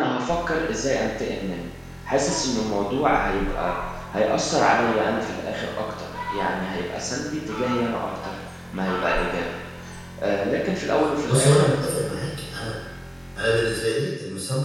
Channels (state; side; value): identical; both; correlation 1.00